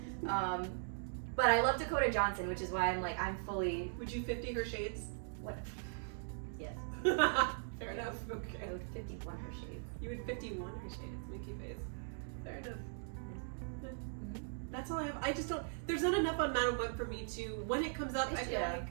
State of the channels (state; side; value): silent; left; digital silence